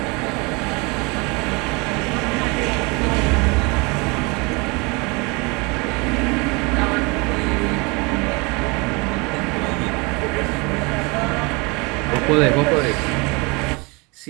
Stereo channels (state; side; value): quieter; left; 28.1 dB